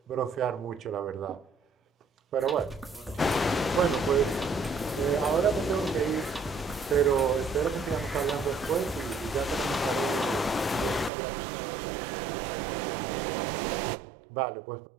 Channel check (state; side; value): drops out; left; at 11.1 s